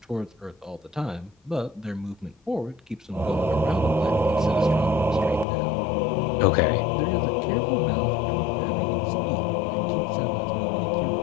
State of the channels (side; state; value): right; drops out; at 5.5 s